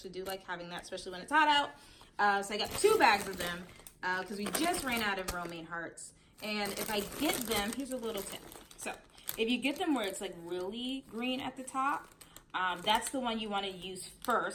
do like having that, especially when it's hot out. So I got 2 bags of them because we just ran out of Romaine Hearts. And if I get them, here's a little tip. So if you get them where it's like really green at the top, that's the one you want to use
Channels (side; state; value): both; identical; correlation 1.00